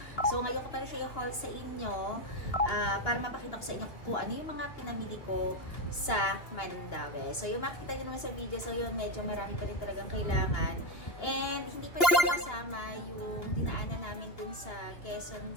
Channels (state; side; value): late; right; 2.8 ms